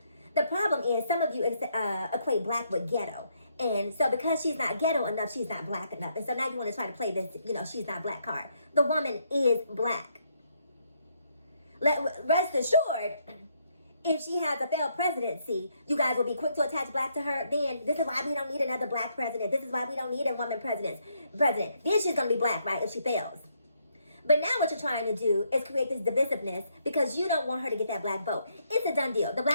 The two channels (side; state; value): both; inverted; correlation -0.73